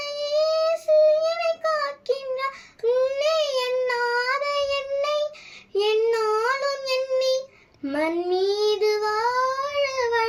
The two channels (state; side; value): identical; both; correlation 1.00